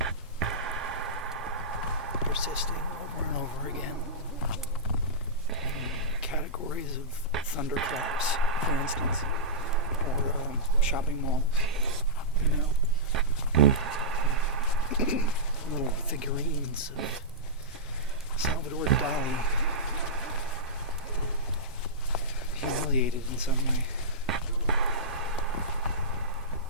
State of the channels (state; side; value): normal; both; correlation -0.16